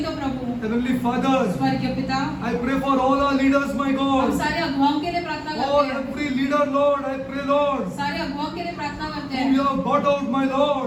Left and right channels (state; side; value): identical; both; correlation 1.00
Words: का प्रभु। Heavenly Father, स्वर्गीय पिता, I pray for all our leaders, my हम God. सारे अगुवाओं के लिए प्रार्थना Oh, करते हैं, every leader, Lord, I pray, Lord, सारे अगुवाओं के लिए प्रार्थना करते whom you हैं have brought out, my